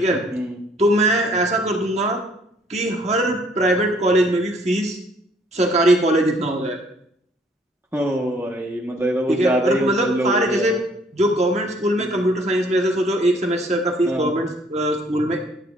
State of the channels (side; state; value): both; normal; correlation 0.61